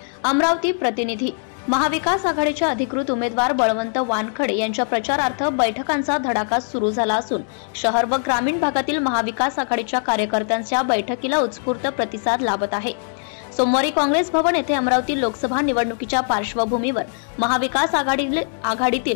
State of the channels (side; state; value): right; silent; 65 dB below the other